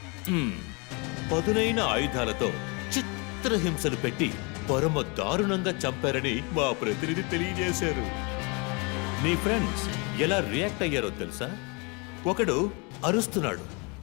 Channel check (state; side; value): quieter; right; 30.7 dB